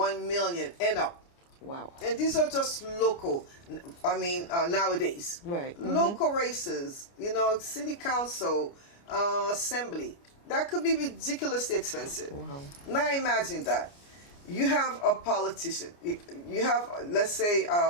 million and up. Wow. And these are just local, I mean, nowadays. Right. Local races, you know, city council, assembly. That could be ridiculously expensive. Wow. Now imagine that. You have a politician. You have, let's say,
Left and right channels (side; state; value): right; late; 29 ms